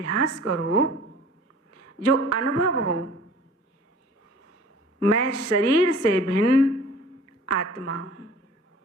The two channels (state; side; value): normal; both; correlation 0.48